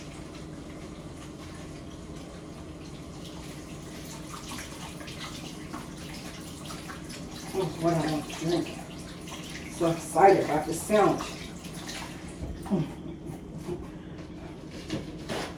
What I want to drink. So excited about this sandwich.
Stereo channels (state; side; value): identical; both; correlation 1.00